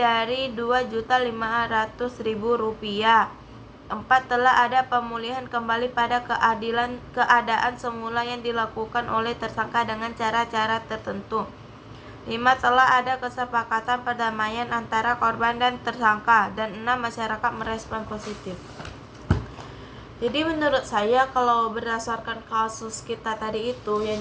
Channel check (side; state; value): both; identical; correlation 1.00